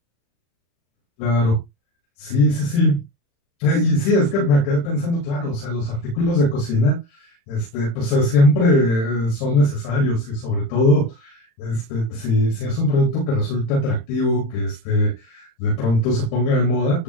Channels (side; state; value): right; late; 35 ms